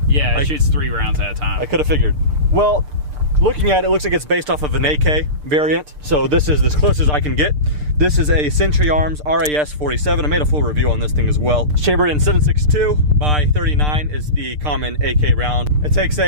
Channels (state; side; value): late; left; 6.7 ms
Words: Yeah, it shoots 3 rounds at a time. I could have figured. Well, looking at it, it looks like it's based off of an AK variant. So this is as close as I can get. This is a Century Arms RAS 47. I made a full review on this thing as well. Chambered in 7.62 by 39 is the common AK round. It takes